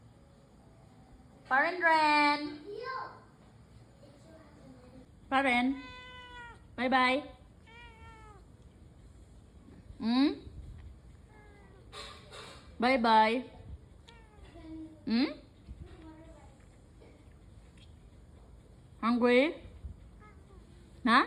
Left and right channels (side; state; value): both; identical; correlation 1.00